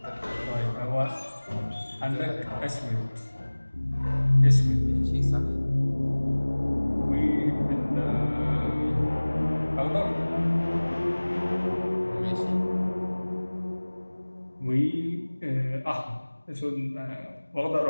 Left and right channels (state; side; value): inverted; both; correlation -1.00